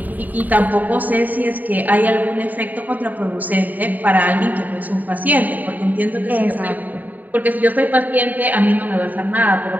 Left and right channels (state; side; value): late; left; 0.083 ms